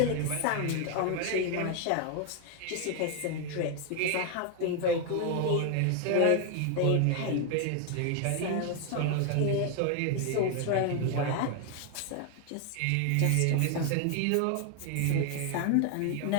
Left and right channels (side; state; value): both; different; correlation 0.00